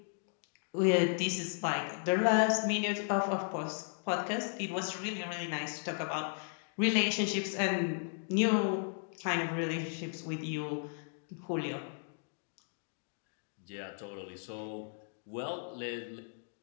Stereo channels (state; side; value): silent; right; 54 dB below the other